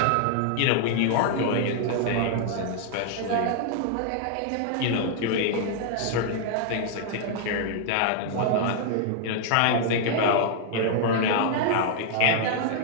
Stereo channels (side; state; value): both; different; correlation 0.00